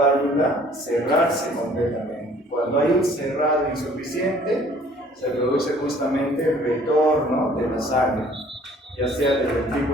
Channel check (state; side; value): normal; both; correlation 0.55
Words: cerrarse completamente. Cuando hay un cerrado insuficiente, se produce justamente el retorno de la sangre, ya sea del